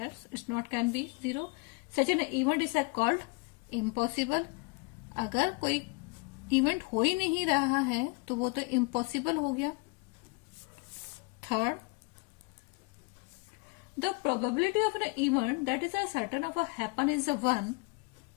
it's not can be 0. Such an event is called impossible. अगर कोई event हो ही नहीं रहा है तो वो तो impossible हो गया. Third, the probability of an event that is a certain of a happen is a 1,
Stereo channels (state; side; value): quieter; right; 28.7 dB